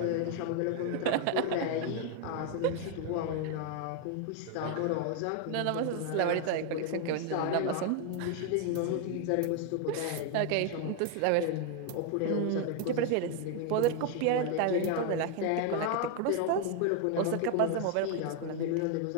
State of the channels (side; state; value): both; different; correlation 0.01